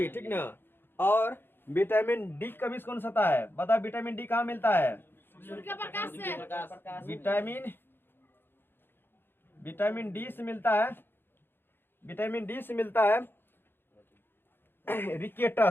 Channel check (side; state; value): right; late; 0.10 ms